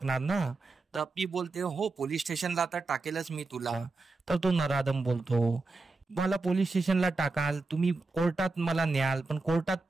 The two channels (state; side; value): quieter; left; 3.6 dB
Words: ना? तर अप्पी बोलते, हो पोलीस स्टेशनला आता टाकेलच मी तुला. तर तो नराधम बोलतो, मला पोलीस स्टेशनला टाकाल, तुम्ही कोर्टात मला न्याल, पण कोर्टात